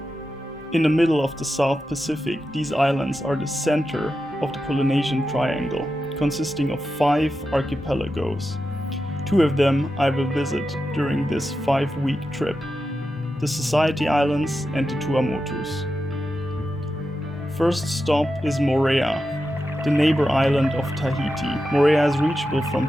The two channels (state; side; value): normal; both; correlation 0.90